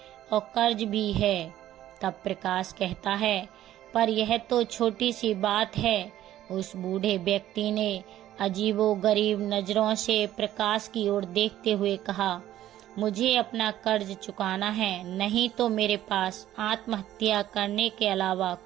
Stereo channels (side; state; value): left; quieter; 13.0 dB